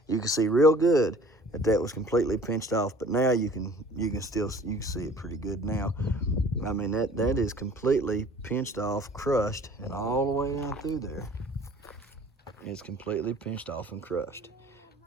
You can see real good that was completely pinched off, but now you can see it pretty good now. I mean, that is completely pinched off, crushed, and all the way down through there. It's completely pinched off and crushed.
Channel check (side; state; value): both; normal; correlation 0.49